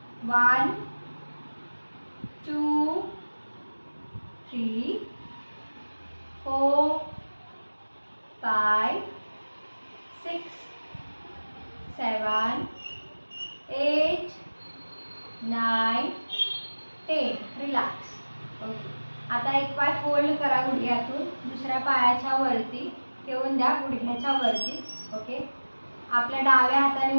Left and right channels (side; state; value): both; inverted; correlation -1.00